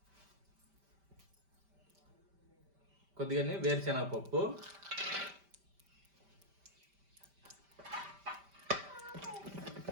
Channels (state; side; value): late; left; 5.1 ms